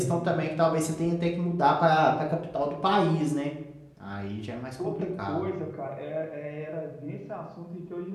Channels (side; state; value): both; identical; correlation 1.00